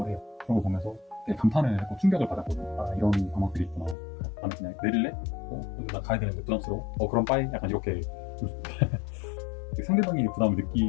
해요. 그런 거 보면서 되게 감탄을 했고 충격을 받았거든요. 아, 이런 방법들이 있구나. 나는 그냥 내릴래? 근데 나 가야 되는데 부담스러워? 그럼 빠이? 약간 이렇게 상대방이 부담을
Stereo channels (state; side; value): drops out; right; at 4.0 s